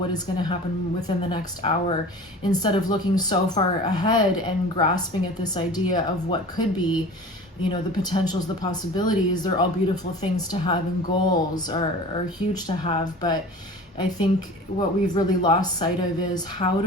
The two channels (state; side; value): normal; both; correlation 0.39